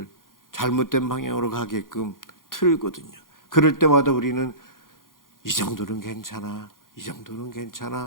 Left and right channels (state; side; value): late; right; 0.90 ms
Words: 잘못된 방향으로 가게끔 틀거든요. 그럴 때마다 우리는 이 정도는 괜찮아, 이 정도는